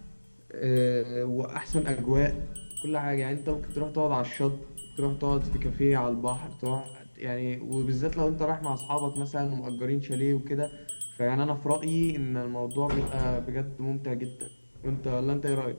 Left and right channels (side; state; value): both; inverted; correlation -1.00